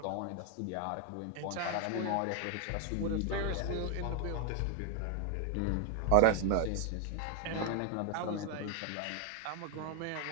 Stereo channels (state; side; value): different; both; correlation 0.00